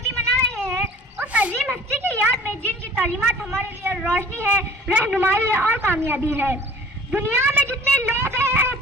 منا رہے ہیں، اس عظیم ہستی کی یاد میں جن کی تعلیمات ہمارے لیے روشنی ہے، رہنمائی ہے اور کامیابی ہے. دنیا میں جتنے لوگ ہیں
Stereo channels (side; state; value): both; normal; correlation 0.48